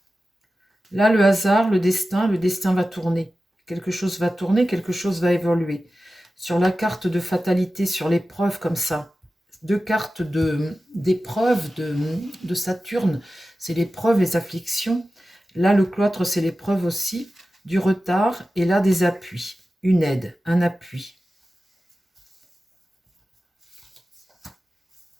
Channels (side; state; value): both; normal; correlation 0.94